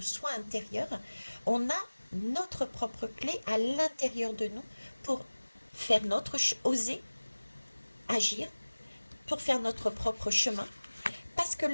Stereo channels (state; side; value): inverted; both; correlation -1.00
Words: soi intérieur. On a notre propre clé à l'intérieur de nous pour faire oser agir, pour faire notre propre chemin. Parce que